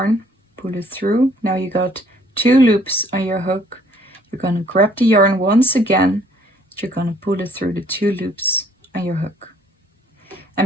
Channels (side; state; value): both; normal; correlation 0.61